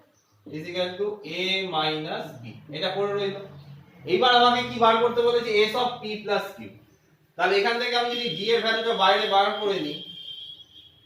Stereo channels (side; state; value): both; identical; correlation 1.00